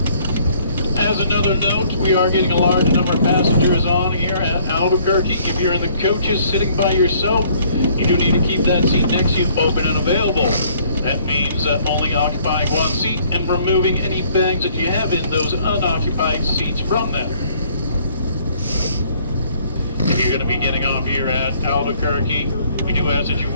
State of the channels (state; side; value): inverted; both; correlation -0.61